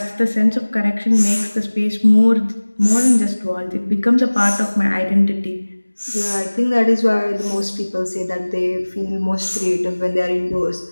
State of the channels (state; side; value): inverted; both; correlation -1.00